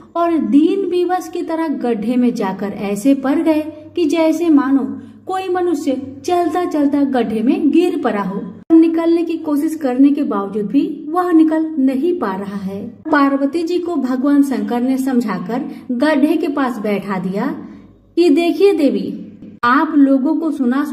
और दीन विवश की तरह गड्ढे में जाकर ऐसे पड़ गए कि जैसे मानो कोई मनुष्य चलता चलता गड्ढे में गिर पड़ा हो। निकलने की कोशिश करने के बावजूद भी वह निकल नहीं पा रहा है। पार्वती जी को भगवान शंकर ने समझाकर गड्ढे के पास बैठा दिया कि देखिए देवी, आप लोगों को सुना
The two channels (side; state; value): both; identical; correlation 1.00